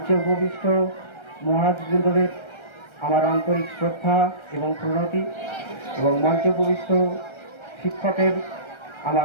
উপবিষ্ট মহারাজবৃন্দদের আমার আন্তরিক শ্রদ্ধা এবং প্রণতি, এবং মঞ্চে উপবিষ্ট শিক্ষকের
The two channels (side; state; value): right; late; 1.3 ms